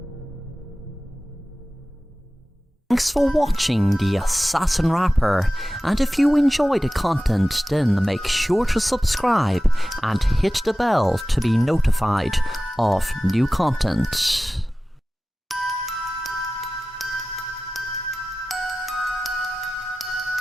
Thanks for watching the Assassin Rapper, and if you enjoy the content then make sure to subscribe and hit the bell to be notified of new content.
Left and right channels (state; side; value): normal; both; correlation 0.96